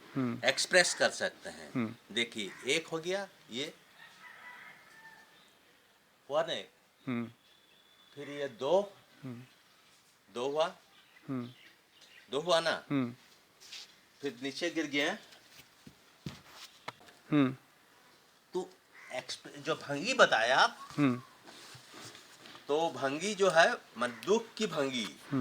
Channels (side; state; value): both; identical; correlation 1.00